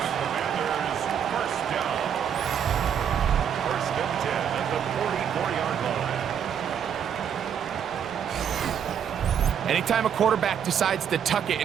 First and 10 at the 44-yard line. Anytime a quarterback decides to tuck it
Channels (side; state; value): left; quieter; 8.4 dB